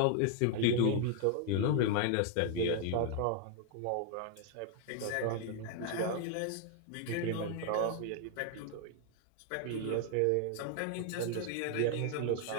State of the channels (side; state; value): both; different; correlation 0.00